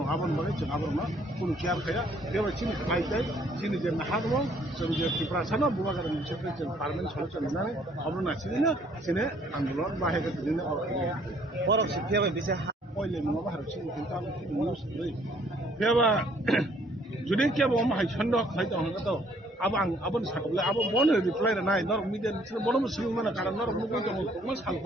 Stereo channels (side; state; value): both; normal; correlation 0.63